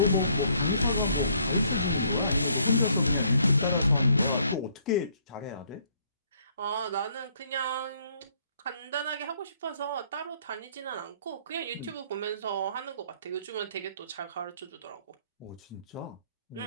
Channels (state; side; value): inverted; both; correlation -0.65